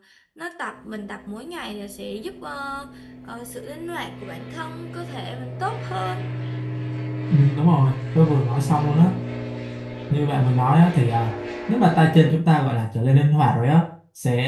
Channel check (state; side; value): identical; both; correlation 1.00